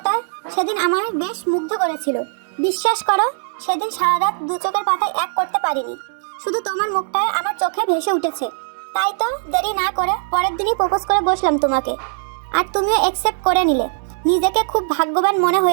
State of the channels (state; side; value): silent; left; 66 dB below the other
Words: সেদিন আমার বেশ মুগ্ধ করেছিল। বিশ্বাস করো, সেদিন সারা রাত দু চোখের পাতায় এক করতে পারিনি। শুধু তোমার মুখটায় আমার চোখে ভেসে উঠেছে। তাই তো দেরি না করে পরের দিনই প্রপোজ করে বসলাম তোমাকে, আর তুমিও অ্যাকসেপ্ট করে নিলে। নিজেকে খুব ভাগ্যবান মনে